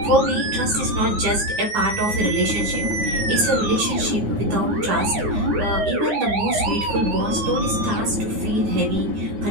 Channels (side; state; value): left; late; 9.6 ms